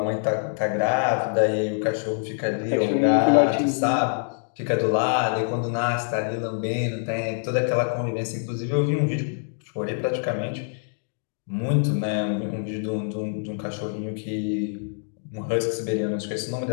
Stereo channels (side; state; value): right; silent; digital silence